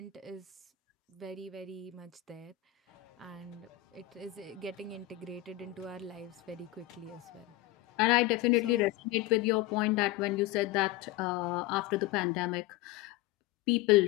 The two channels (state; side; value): quieter; right; 16.1 dB